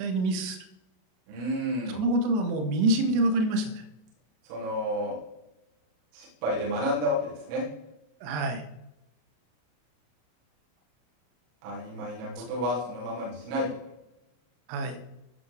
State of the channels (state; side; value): late; left; 33 ms